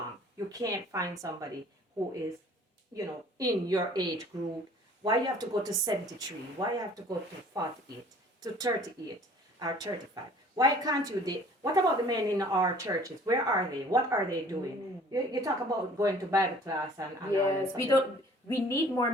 you can't find somebody who is, in your age group. Why you have to go to 73? Why you have to go to 48, to 38, or 35? Why can't you date? What about the men in our churches? Where are they? What are they doing? You talk about going to Bible class and all Yes, this. we need more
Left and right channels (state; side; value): normal; both; correlation 0.52